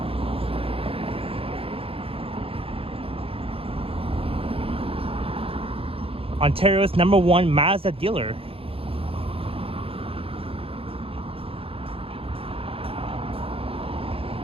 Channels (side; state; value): left; late; 0.27 ms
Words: Ontario's #1 Mazda dealer.